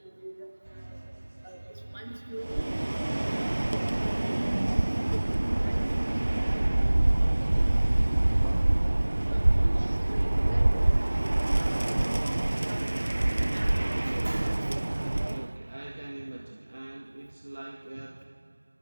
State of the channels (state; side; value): inverted; both; correlation -1.00